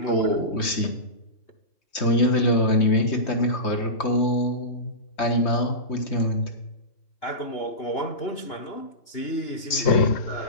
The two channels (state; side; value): late; right; 3.2 ms